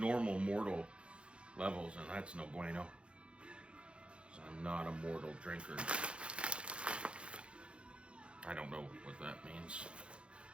mortal levels, and that's no bueno. So I'm not a mortal drinker. I don't know what that means.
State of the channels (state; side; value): late; left; 0.058 ms